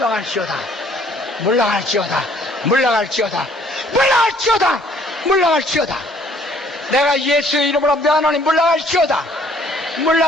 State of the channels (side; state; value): both; normal; correlation 0.60